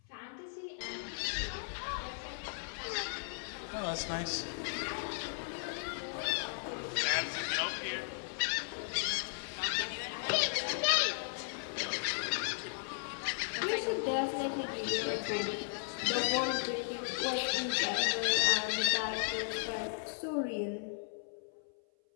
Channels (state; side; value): silent; right; 54 dB below the other